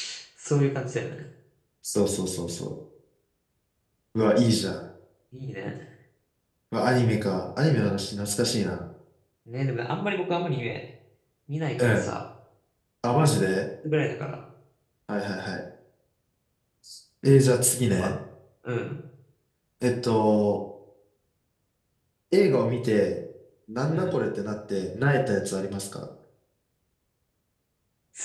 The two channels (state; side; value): identical; both; correlation 1.00